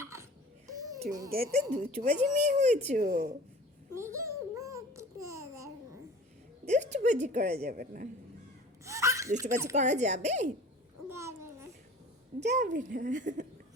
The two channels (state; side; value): normal; both; correlation 0.42